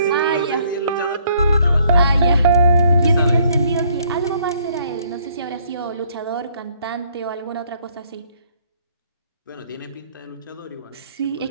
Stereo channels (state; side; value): inverted; both; correlation -0.65